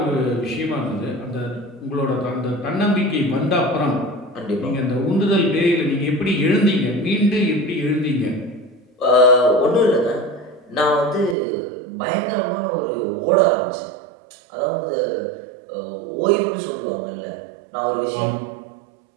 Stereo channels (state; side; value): drops out; left; at 11.4 s